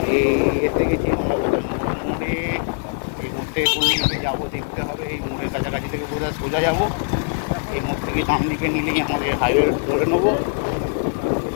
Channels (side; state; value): right; silent; digital silence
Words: এসে গেছি আমরা মোড়ে। এই মোড় থেকে কোন দিকে যাবো দেখতে হবে। এই মোড়ের কাছাকাছি থেকে বোধহয় সোজা যাবো। এই মোড় থেকে ডান দিকে নিলেই আমাদের হাইওয়ে ধরে নেবো।